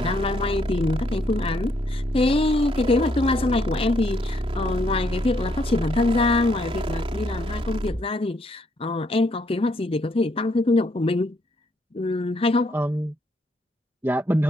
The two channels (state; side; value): normal; both; correlation 0.72